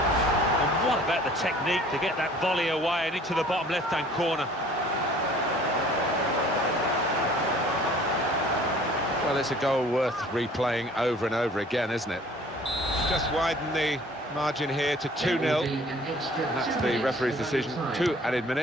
And what about the technique to get that volley away and into the bottom left-hand corner? Well, it's a goal worth replaying over and over again, isn't it? Just widen the margin here to 2-0. That's the referee's decision. 2 added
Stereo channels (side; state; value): both; normal; correlation 0.52